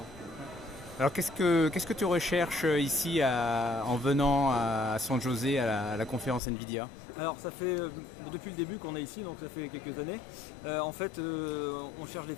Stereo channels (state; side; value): drops out; right; at 6.4 s